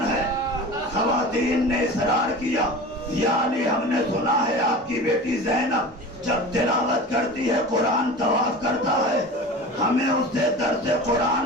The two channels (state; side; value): normal; both; correlation 0.34